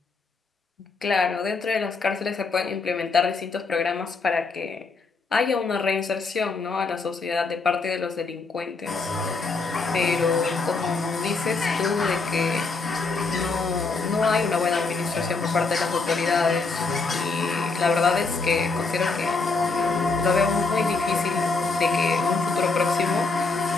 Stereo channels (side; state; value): right; quieter; 4.1 dB